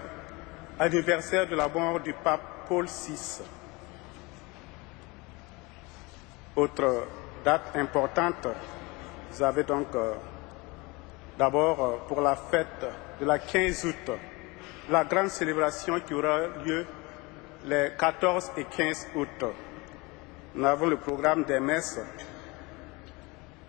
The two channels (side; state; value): right; quieter; 25.3 dB